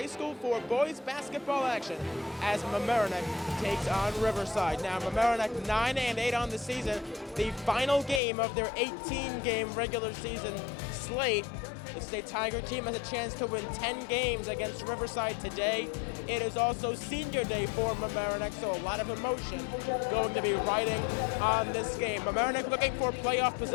School for boys basketball action as Mamaroneck takes on Riverside. Now, Mamaroneck 9-8 on the season, the final game of their 18-game regular season slate. The State Tiger team has a chance to win 10 games against Riverside today. It is also senior day for Mamaroneck, so a lot of emotion going to be riding on this game. Mamaroneck looking for playoff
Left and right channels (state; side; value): drops out; right; at 8.2 s